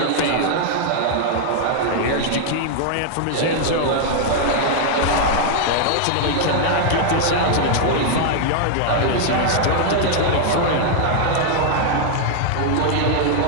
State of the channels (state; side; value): different; both; correlation 0.00